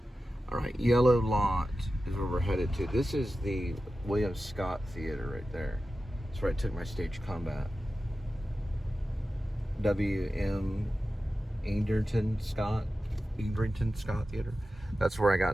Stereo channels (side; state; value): both; normal; correlation 0.93